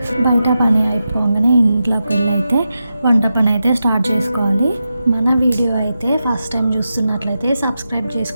బయట పని అయిపోగానే ఇంట్లోకి వెళ్ళి అయితే వంట పని అయితే స్టార్ట్ చేసుకోవాలి. మన వీడియో అయితే ఫస్ట్ టైం చూస్తున్నట్లయితే సబ్స్క్రైబ్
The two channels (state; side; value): inverted; both; correlation -0.90